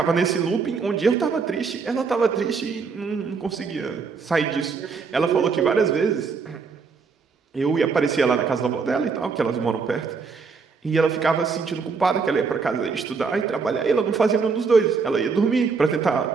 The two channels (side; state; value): left; quieter; 5.1 dB